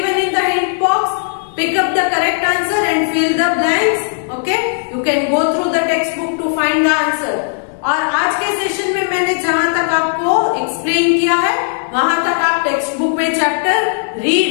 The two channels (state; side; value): silent; right; 67 dB below the other